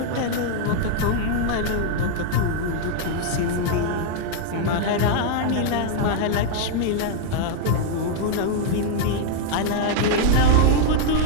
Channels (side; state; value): both; different; correlation 0.00